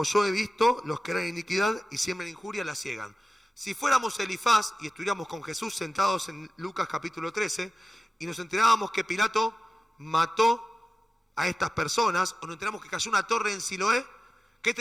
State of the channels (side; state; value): both; normal; correlation 0.95